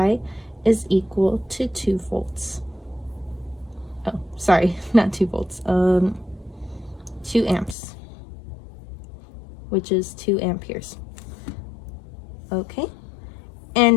is equal to 2 volts. Oh, sorry, not 2 volts, 2 amps, which is 2 amperes. Okay,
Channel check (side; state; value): right; drops out; at 7.8 s